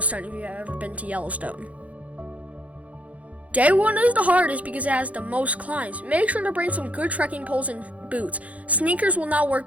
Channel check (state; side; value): late; left; 0.067 ms